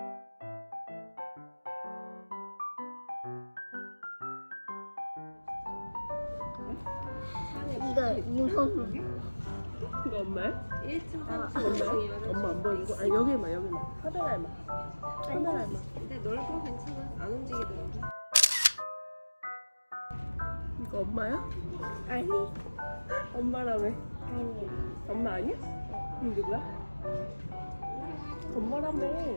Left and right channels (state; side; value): inverted; both; correlation -1.00